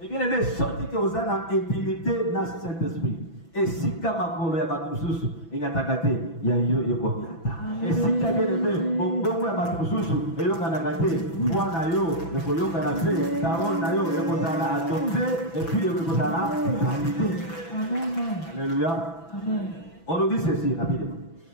Et bien aimé, sorti que vous avez intimité dans ce Saint-Esprit. Et si Kamakolo ya Batususu, il y a Takate, il y a Yokomiata. Et si bien aimé, Bongo ya Batususu, il y a Kanakate, Moi Nayo, il faut Yokanate, Tarol Nayo, il faut Zala adopté, et puis il faut Zala validé. Alléluia. On nous dit ceci rapidement.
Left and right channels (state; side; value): late; right; 6.0 ms